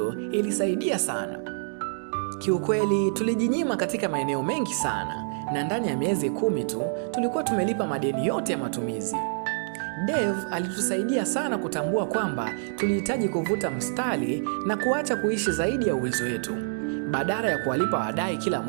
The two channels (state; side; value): silent; left; digital silence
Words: ilisaidia sana. Kiukweli tulijinyima katika maeneo mengi sana, na ndani ya miezi 10 tu tulikuwa tumelipa madeni yote ya matumizi. Dave alitusaidia sana kutambua kwamba tulihitaji kuvuta mstari na kuacha kuishi zaidi ya uwezo wetu. Badala ya kuwalipa wadai kila